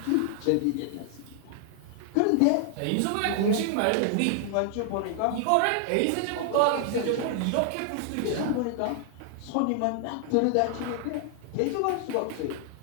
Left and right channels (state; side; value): different; both; correlation 0.00